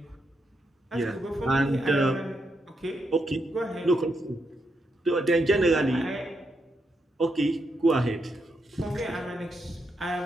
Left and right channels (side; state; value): both; normal; correlation 0.82